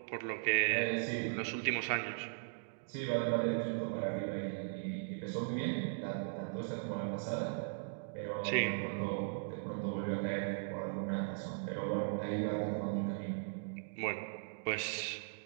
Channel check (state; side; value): silent; left; digital silence